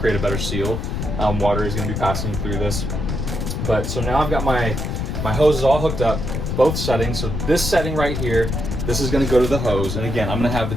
a better seal. Water is going to be passing through this. But so now I've got my hoses all hooked up, both settings. So this setting right here, this is going to go to the hose. And again, I'm going to have the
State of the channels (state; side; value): noise; left; rumble, 3 dB below the sound